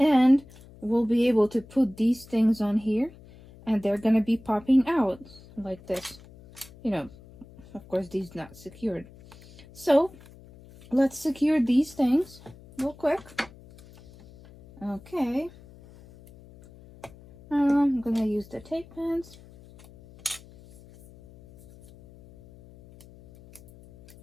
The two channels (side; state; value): left; noise; hum, 22 dB below the sound